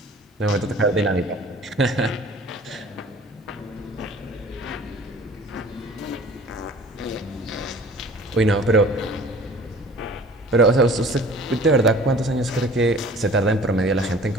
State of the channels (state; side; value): normal; both; correlation 0.47